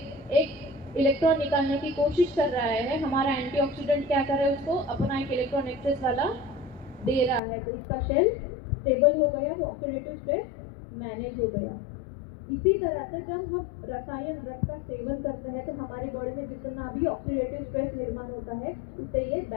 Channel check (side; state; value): right; drops out; at 7.4 s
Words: एक इलेक्ट्रॉन निकालने की कोशिश कर रहा है। हमारा एंटीऑक्सीडेंट क्या कर रहा है? उसको अपना एक इलेक्ट्रॉन एक्सेस वाला दे रहा है, तो उसका शेल स्टेबल हो गया, वो ऑक्सीडेटिव स्ट्रेस मैनेज हो गया। इसी तरह से जब हम रसायन ड्रग का सेवन करते हैं तो हमारी बॉडी में जितना भी ऑक्सीडेटिव स्ट्रेस निर्माण होता है उसे ये